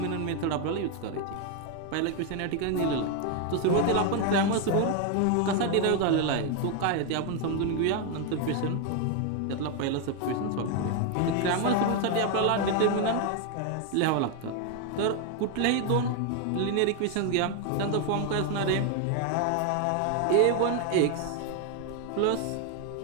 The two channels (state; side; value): different; both; correlation 0.01